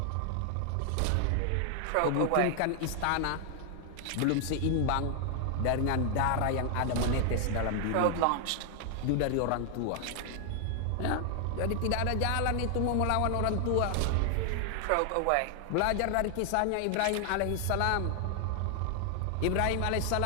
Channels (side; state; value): both; different; correlation 0.00